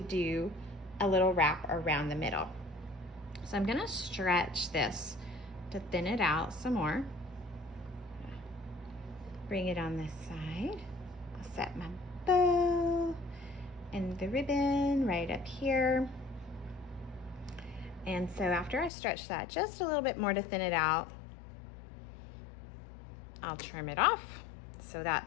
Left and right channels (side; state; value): right; drops out; at 18.9 s